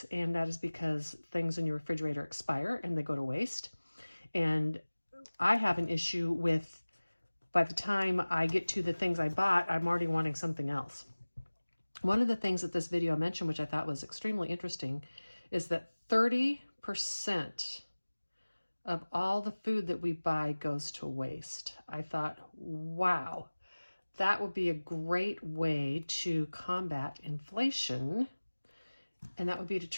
And that is because things in your refrigerator expire and they go to waste. And I have an issue with, by the time I get to the things I bought, I'm already wanting something else. One of the things that this video mentioned, which I thought was extremely interesting, is that 30% of all the food that we buy goes to waste. I thought, wow. That would be a great way to combat inflation, and that would be to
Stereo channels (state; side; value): inverted; both; correlation -1.00